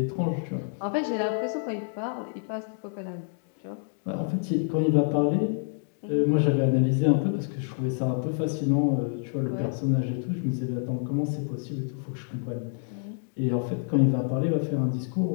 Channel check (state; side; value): silent; right; digital silence